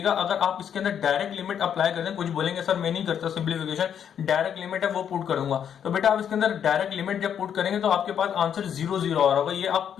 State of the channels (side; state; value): right; quieter; 8.6 dB